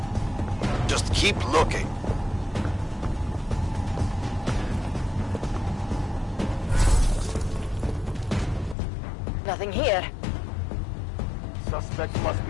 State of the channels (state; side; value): drops out; right; at 8.8 s